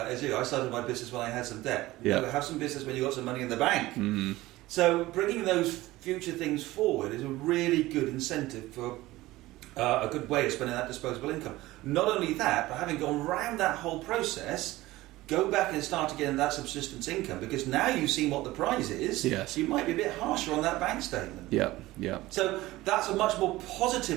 you. I started my business when I had some debt. You know, have some business when you got some money in the bank. So bringing those future things forward is a really good incentive for a good way of spending that disposable income. Not only that, but having gone round that whole process, go back and start again that subsistence income, because now you've seen what the prize is. Yes. You might be a bit harsher on that bank statement. Yeah. So that's a much more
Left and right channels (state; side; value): quieter; left; 18.0 dB